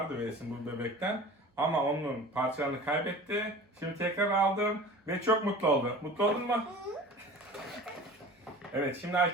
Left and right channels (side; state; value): both; normal; correlation 0.40